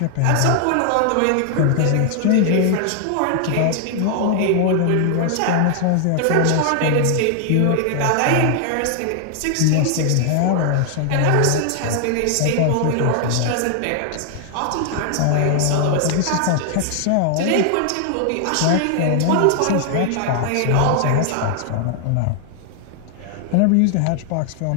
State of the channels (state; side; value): different; both; correlation 0.00